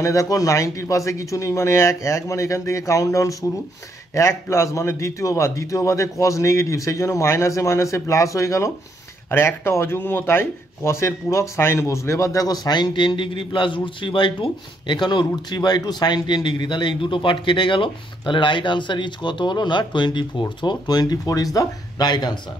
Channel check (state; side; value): normal; both; correlation 0.73